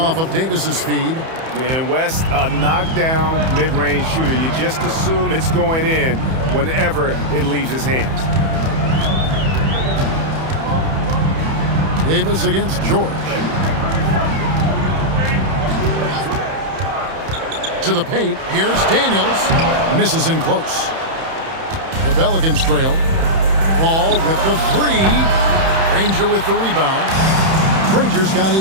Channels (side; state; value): left; late; 31 ms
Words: of Davis's feed. And West, a knockdown mid-range shooter. You just assume it's going in whenever it leaves his hands. Davis against George. To the paint. Here's Daniels. Misses in close. The Pelicans trail. Paul with the 3. Granger with the rebound. Granger's got